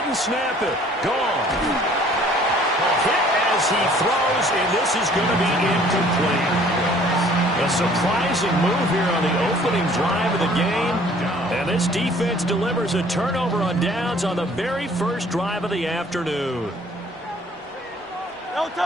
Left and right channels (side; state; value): both; normal; correlation 0.55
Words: and snap it. Goff. Hit as he throws, and this is going to be incomplete. A surprising move here on the opening drive of the game. And this defense delivers a turnover on downs on the very first drive of the afternoon. Don't